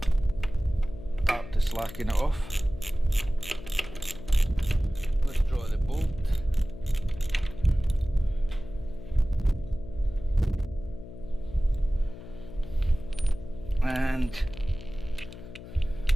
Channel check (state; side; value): noise; left; hum, 14 dB below the sound